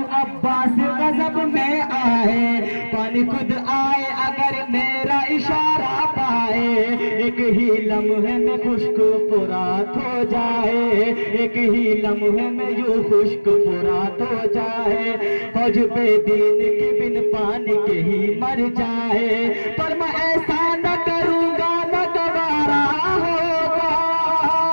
अब्बास गजब में आए, पानी खुद आए अगर मेरा इशारा पाए, एक ही लम्हे में खुश्क फुरात हो जाए, एक ही लम्हे में यूं खुश्क फुरात हो जाए, फौज पे दीन के बिन पानी के ही मर जाए, पर मैं ऐसा न करूँगा न गवारा होगा,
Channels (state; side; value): inverted; both; correlation -1.00